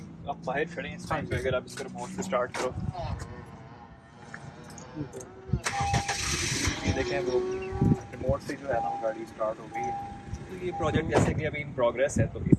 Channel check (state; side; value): identical; both; correlation 1.00